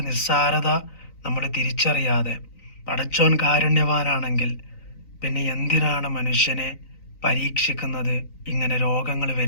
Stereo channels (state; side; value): late; right; 3.9 ms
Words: നിസ്സാരത നമ്മൾ തിരിച്ചറിയാതെ, പടച്ചോൻ കാരുണ്യവാനാണെങ്കിൽ പിന്നെ എന്തിനാണ് മനുഷ്യനെ പരീക്ഷിക്കുന്നത്, ഇങ്ങനെ രോഗങ്ങൾ